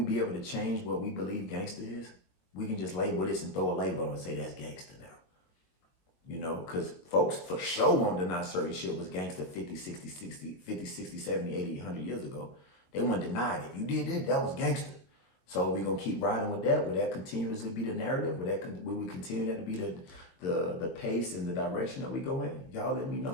be able to change what we believe gangster is? We can just label this and throw a label and say that's gangster now. You know, because folks for sure won't deny certain shit was gangster 50, 60, 70, 80, 100 years ago. They won't deny it. If you did it, that was gangster. So we're going to keep riding with that. Will that continuously be the narrative? Will we continue that to be the pace and the direction that we go in? Y'all let me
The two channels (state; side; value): late; right; 22 ms